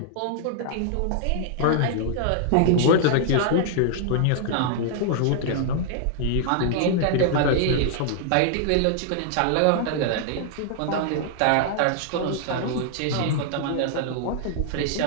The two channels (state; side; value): different; both; correlation -0.01